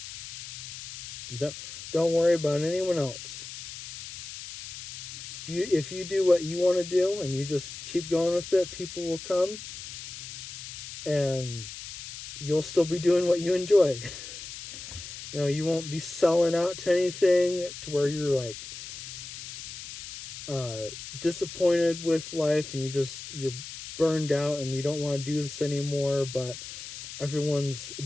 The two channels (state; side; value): noise; left; hiss, 11 dB below the sound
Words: Don't worry about anyone else. If you do what you want to do and you just keep going with it, people will come and you'll still be doing what you enjoy. You won't be selling out to anything to where you're like disappointed with life and you're burned out and you don't want to do this anymore, but everyone's